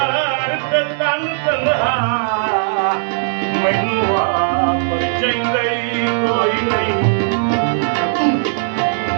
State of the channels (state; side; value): silent; left; digital silence